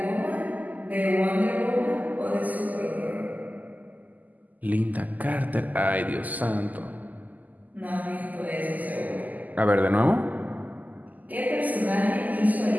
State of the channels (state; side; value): late; left; 0.080 ms